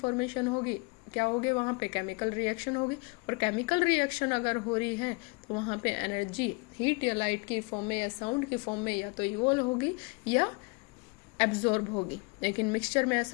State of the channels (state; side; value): quieter; right; 30.6 dB